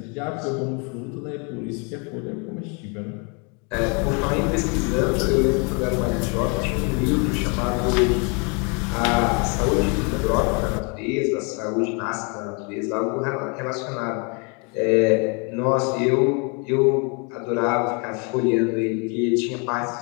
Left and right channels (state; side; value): quieter; right; 34.2 dB